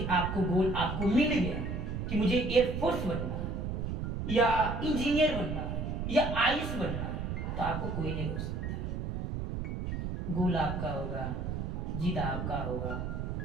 आपको गोल आपको मिल गया कि मुझे एयरफोर्स बनना है या इंजीनियर बनना है या आईएएस बनना है, तो आपको कोई नहीं रोक सकता। गोल आपका होगा, जीत आपका होगा,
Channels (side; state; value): right; noise; rumble, 3 dB below the sound